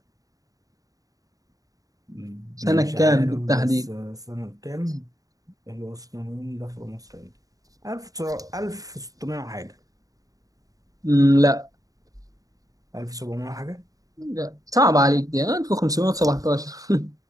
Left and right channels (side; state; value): left; late; 0.17 ms